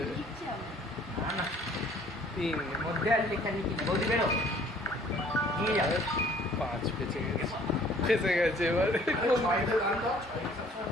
লিখছে আমি। না না 3 মধ্যে আর লেখা লিখি বৌদি বেরো নিয়ে যাবে 5 বেঁচে গেছে ফেসে গেছে এবার ছয়টা গান দাও, ছয় সবসময়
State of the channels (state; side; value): normal; both; correlation 0.56